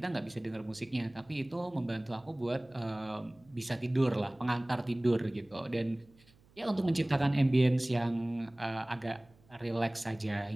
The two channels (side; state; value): right; noise; hum, 29 dB below the sound